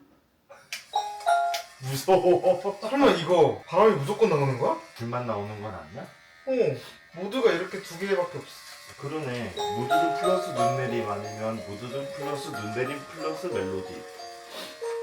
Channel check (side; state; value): both; identical; correlation 1.00